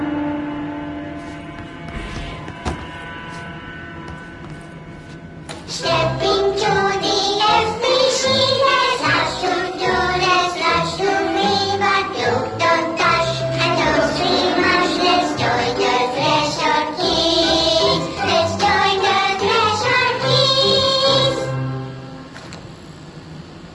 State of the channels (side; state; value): both; identical; correlation 1.00